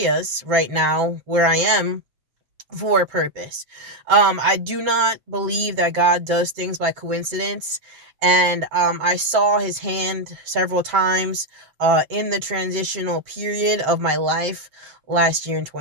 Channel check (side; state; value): left; late; 7.5 ms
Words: right now where I am for a purpose. I do not believe that God does things by coincidence. And I saw his hand several times in the transitional period of my life last year in